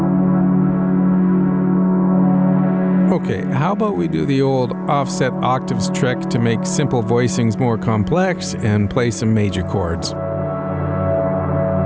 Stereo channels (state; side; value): noise; left; hum, 29 dB below the sound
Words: Okay, how about we do the old offset octaves trick to make simple voicings more complex and play some major chords.